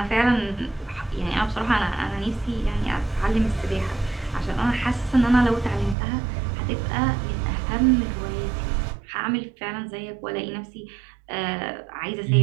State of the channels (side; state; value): left; drops out; at 6.0 s